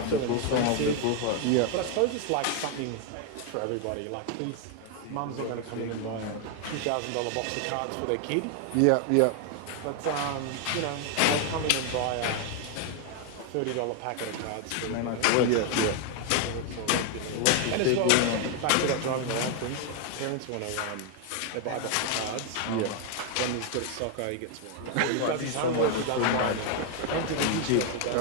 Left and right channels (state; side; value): different; both; correlation 0.01